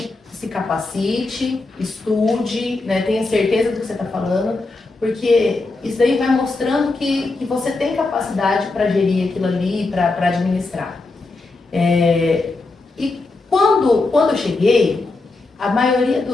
se capacite, estude, né? Tenha certeza do que você está falando, porque isso aí vai mostrando que você tem capacidade para gerir aquilo ali, para administrar. E quando eu cheguei, a maioria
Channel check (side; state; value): right; quieter; 3.4 dB